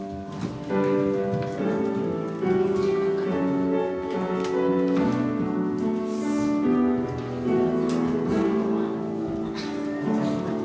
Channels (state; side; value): identical; both; correlation 1.00